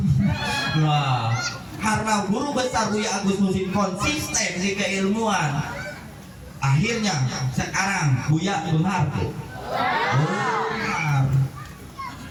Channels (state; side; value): identical; both; correlation 1.00